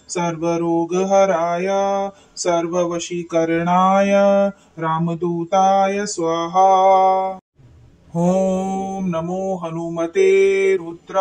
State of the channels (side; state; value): both; identical; correlation 1.00